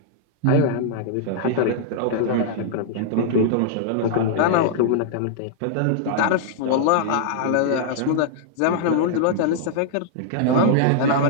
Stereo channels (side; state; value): both; different; correlation -0.01